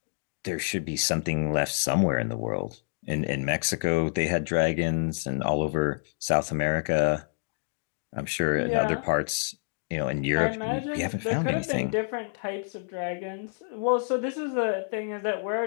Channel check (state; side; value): silent; right; digital silence